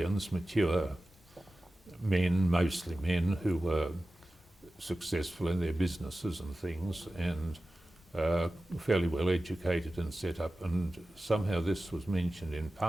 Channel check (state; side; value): normal; both; correlation 0.95